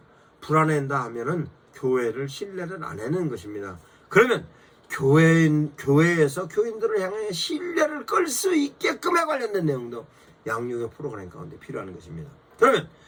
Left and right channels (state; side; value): identical; both; correlation 1.00